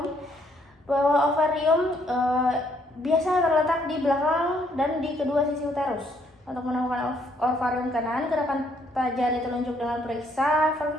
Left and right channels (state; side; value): normal; both; correlation 0.68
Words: Bahwa ovarium biasa terletak di belakang dan di kedua sisi uterus. Untuk menemukan ovarium kanan, gerakan jari telunjuk dengan periksa